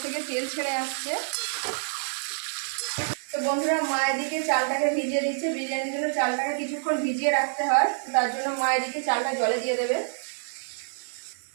থেকে তেল ছেড়ে আসছে। তো বন্ধুরা মা এদিকে চালটাকে ভিজিয়ে দিচ্ছে, বিরিয়ানির জন্য চালটাকে কিছুক্ষণ ভিজিয়ে রাখতে হয়, তার জন্য মা এদিকে চালটা জলে দিয়ে দেবে।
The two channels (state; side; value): silent; left; 60 dB below the other